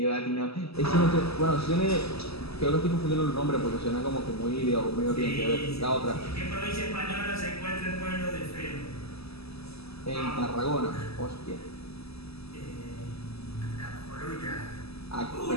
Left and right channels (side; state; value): right; late; 0.78 ms